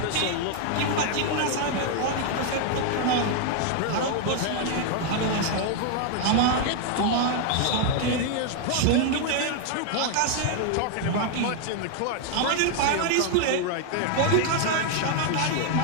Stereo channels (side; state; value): both; different; correlation 0.00